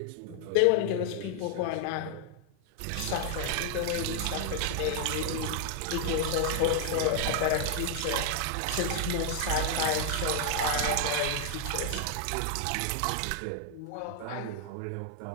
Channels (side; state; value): both; different; correlation 0.00